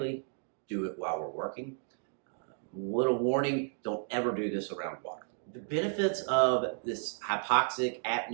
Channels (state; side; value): silent; left; 56 dB below the other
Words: do it while we're working. Little warning, don't ever do this around water. The benefits of this hypoxic